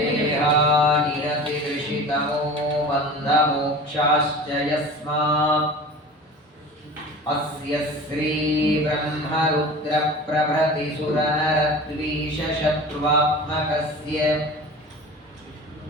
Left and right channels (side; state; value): both; normal; correlation 0.37